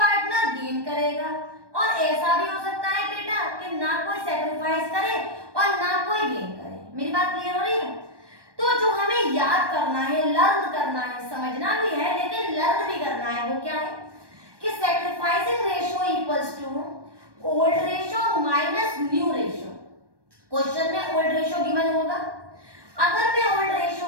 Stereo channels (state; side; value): late; left; 1.2 ms